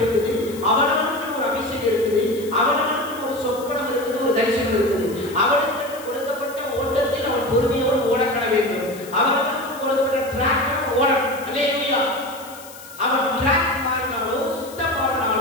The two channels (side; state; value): left; noise; hiss, 18 dB below the sound